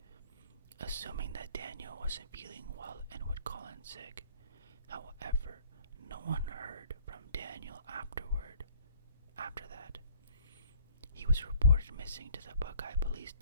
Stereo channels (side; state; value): both; inverted; correlation -0.57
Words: assuming that Daniel wasn't feeling well and would call in sick. However, no one heard from Daniel after that. He was reported missing to the Buckeye Police